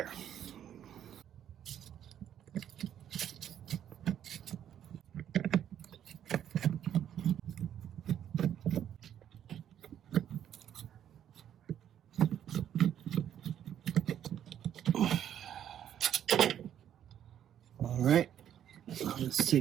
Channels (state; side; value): quieter; left; 10.1 dB